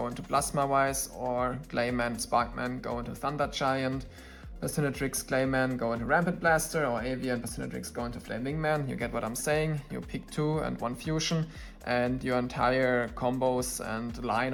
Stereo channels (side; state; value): both; identical; correlation 1.00